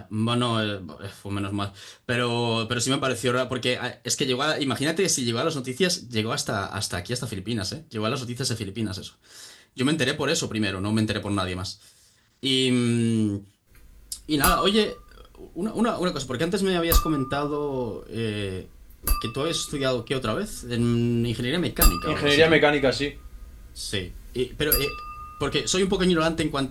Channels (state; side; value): identical; both; correlation 1.00